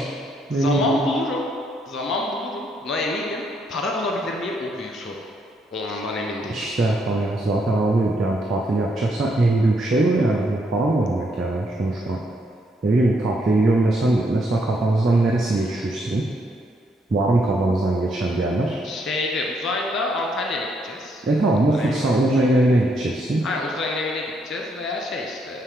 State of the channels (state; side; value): normal; both; correlation 0.74